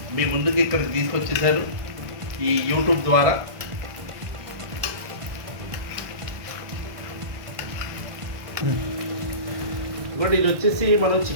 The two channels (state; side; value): late; left; 1.5 ms